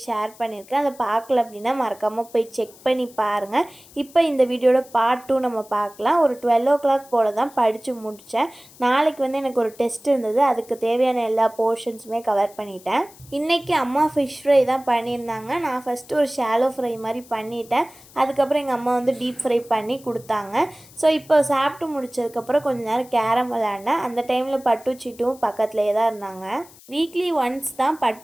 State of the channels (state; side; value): noise; left; hiss, 23 dB below the sound